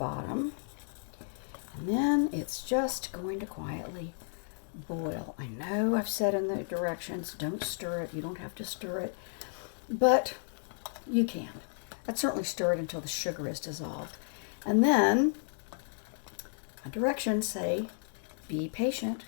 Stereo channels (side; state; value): right; silent; digital silence